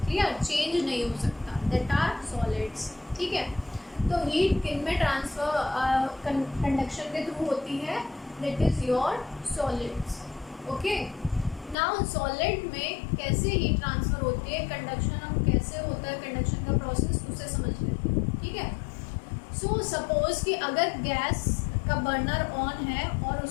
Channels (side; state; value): right; drops out; at 11.8 s